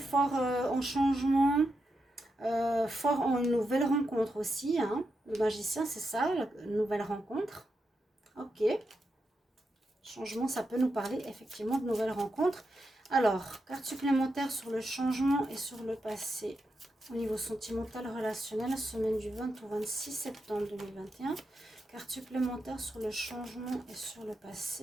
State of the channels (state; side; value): normal; both; correlation 0.86